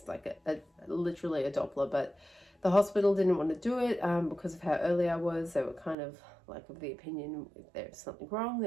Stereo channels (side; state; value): left; drops out; at 6.0 s